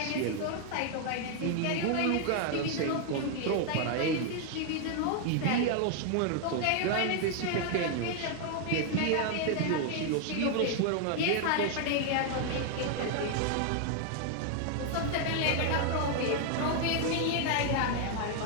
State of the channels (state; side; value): different; both; correlation 0.00